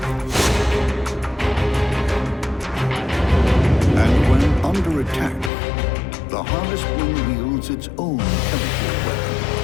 And when under attack, the Harvestman wields its own chemical weapon.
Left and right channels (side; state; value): right; drops out; at 5.5 s